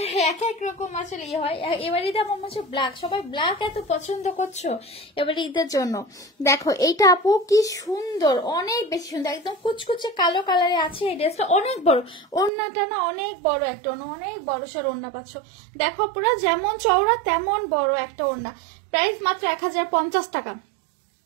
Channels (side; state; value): left; drops out; at 12.5 s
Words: এক এক রকম আসলে ইয়ে হয়। এবার ঈদে আমার মনে হচ্ছে ব্ল্যাক, সবাই ব্ল্যাক এত পছন্দ করছো এবার ঈদের জন্য। দেখো এইটা আপু কি সুন্দর, অনেক বেশি সুন্দর, একদম কুচকুচে কালো কালারে আছে। এই ড্রেসটা অনেক বড়, ওড়নাটা না অনেক বড় একটা ওড়না, অনেক বড় সড় ওড়না পাচ্ছ। দেখো পুরো যেমন চওড়া তেমন বড় একটা ওড়না। প্রাইস মাত্র 1050 টাকা।